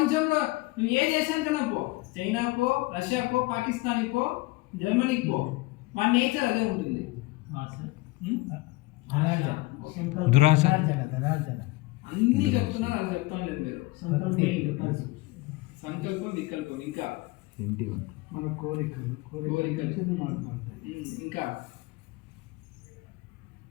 నువ్వు ఏ దేశానికైనా పో, చైనా పో, రష్యా పో, పాకిస్తాన్ పో, జర్మనీకి పో, మన నేచర్ అదే ఉంటుంది. దురాశ అన్ని చెప్తున్నారు, అది చెప్తాం లేదు మీరు. సంకల్పం, వికల్పం, ఇంకా మన కోరికలు.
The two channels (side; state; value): right; quieter; 21.1 dB